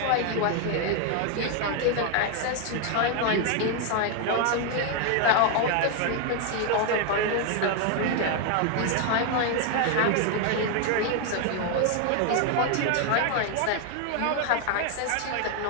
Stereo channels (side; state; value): both; different; correlation 0.01